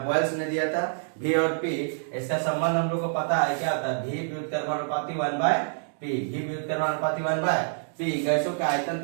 बॉयल्स ने दिया था, V और P। इसका संबंध हम लोग को पता है, क्या होता है, V व्युत्क्रमानुपाती 1/P, V व्युत्क्रमानुपाती 1/P। गैसों के आयतन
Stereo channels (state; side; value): silent; left; digital silence